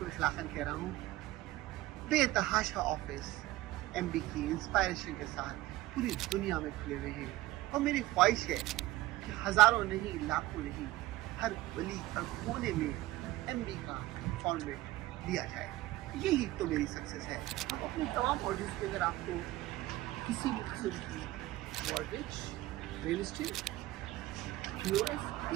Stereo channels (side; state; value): left; quieter; 17.1 dB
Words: इखलाकन कह रहा हूँ, बेतहाशा ऑफिस MD की इंस्पायरेशन के साथ पूरी दुनिया में खुले हुए हैं। और मेरी ख्वाहिश है कि हजारों नहीं, लाखों नहीं, हर गली हर कोने में MD का फॉर्मेट दिया जाए। यही तो मेरी सक्सेस है। अब अपनी तमाम ऑडियंस के अगर आपको किसी भी किस्म की mortgage, real estate, POS,